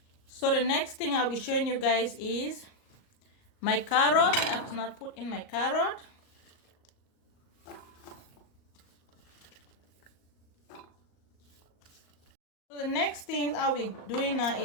So the next thing I'll be showing you guys is my carrot. I have to not put in my carrot. So the next thing I'll be doing now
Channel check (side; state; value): right; late; 38 ms